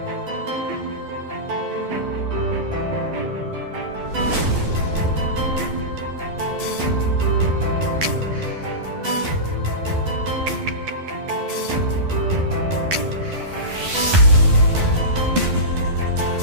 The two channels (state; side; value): late; left; 12 ms